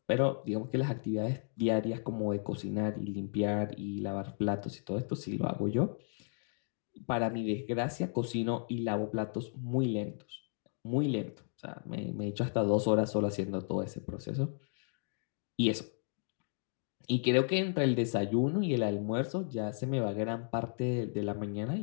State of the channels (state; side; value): silent; right; digital silence